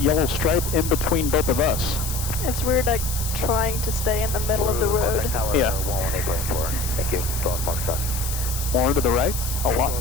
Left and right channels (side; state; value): left; noise; hiss, 7 dB below the sound